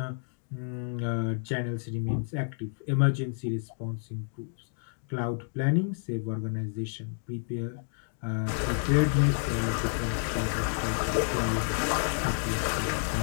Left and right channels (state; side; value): silent; right; digital silence